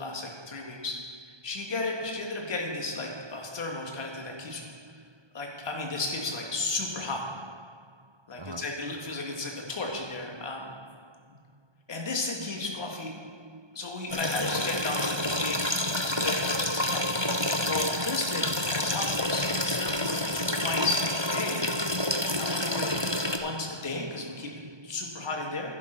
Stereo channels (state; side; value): late; left; 1.2 ms